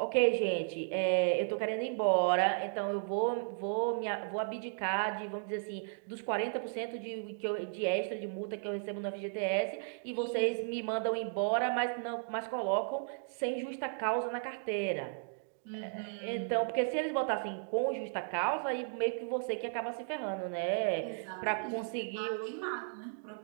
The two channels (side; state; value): left; silent; digital silence